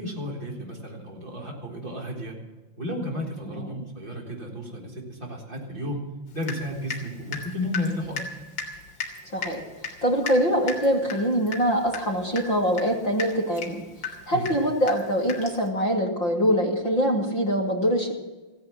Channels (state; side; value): late; right; 5.8 ms